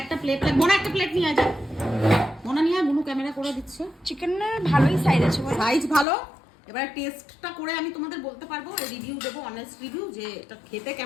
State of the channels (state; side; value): drops out; right; at 6.1 s